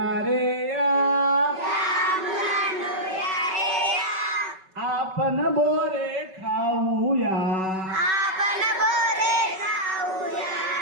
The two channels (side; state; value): left; late; 5.3 ms